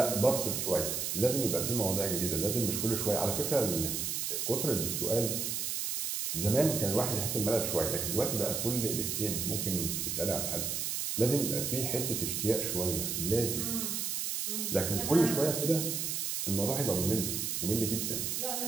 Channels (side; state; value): right; noise; hiss, 1 dB below the sound